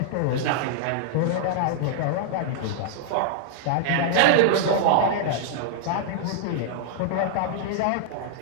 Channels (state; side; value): different; both; correlation -0.01